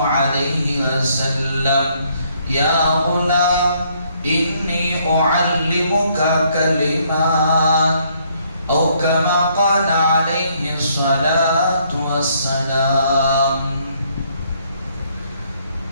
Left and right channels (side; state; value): both; inverted; correlation -0.68